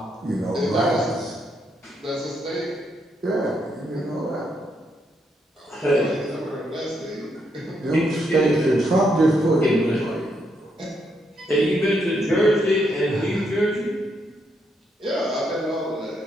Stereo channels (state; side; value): normal; both; correlation 0.77